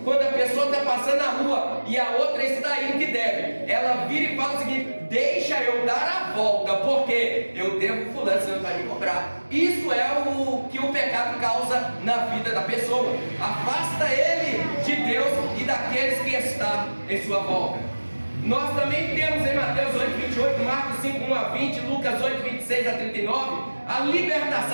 Quando a pessoa está passando na rua e a outra está indo que deve, ela vira e fala o seguinte: deixa eu dar a volta, porque eu devo fulano, você não vai me cobrar. Isso é o que o pecado causa na vida da pessoa. Afasta ele de Deus e daqueles que estão em sua volta. Nós também temos em Mateus 8, 28, Marcos 5, 1 a 20, Lucas 8, 26 a 39, a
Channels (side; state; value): both; inverted; correlation -1.00